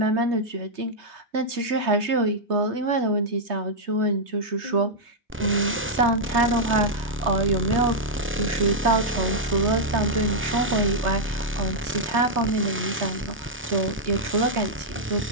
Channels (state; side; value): normal; both; correlation -0.05